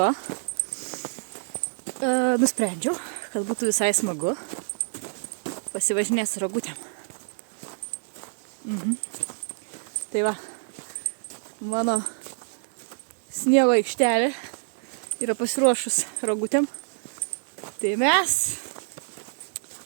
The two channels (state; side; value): silent; left; digital silence